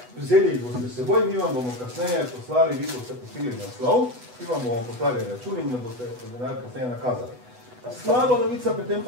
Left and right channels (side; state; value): left; late; 8.1 ms